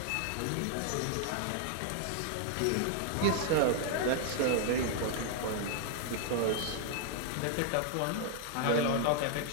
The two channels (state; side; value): different; both; correlation 0.00